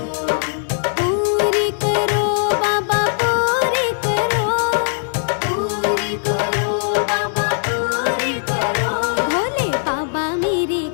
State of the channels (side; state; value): right; silent; digital silence